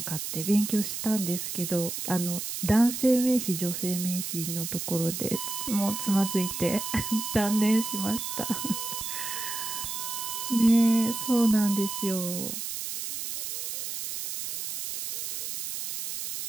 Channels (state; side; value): noise; right; hiss, 5 dB below the sound